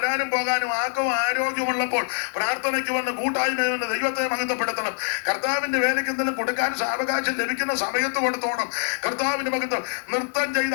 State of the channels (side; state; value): right; silent; digital silence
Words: പോകാനും ആക്കവും ആരോഗ്യമുള്ളപ്പോൾ പ്രാർത്ഥനയ്ക്ക് വന്ന് കൂട്ടായ്മ വന്ന് ദൈവത്തെ മഹത്വപ്പെടുത്തണം. കർത്താവിന്റെ വേലയ്ക്ക് എന്തെങ്കിലും കൊടുക്കാൻ സാവകാശം ലഭിക്കുന്ന സമയത്ത് കൊടുത്തോണം. കർത്താവിന്റെ മഹത്വം നൃത്തം ചെയ്ത്